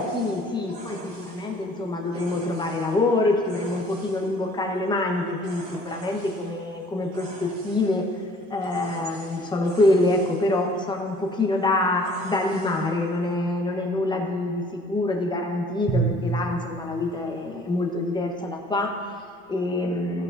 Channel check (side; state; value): both; normal; correlation 0.55